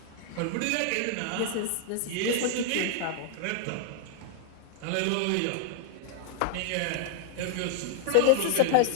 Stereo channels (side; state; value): both; different; correlation 0.00